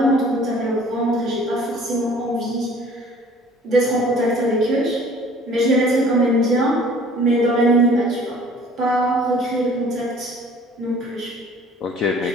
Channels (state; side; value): normal; both; correlation 0.51